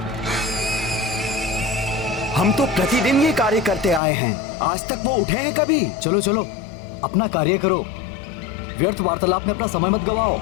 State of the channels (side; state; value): right; drops out; at 4.0 s